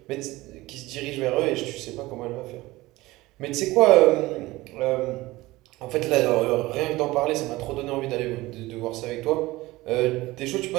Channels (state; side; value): quieter; left; 19.4 dB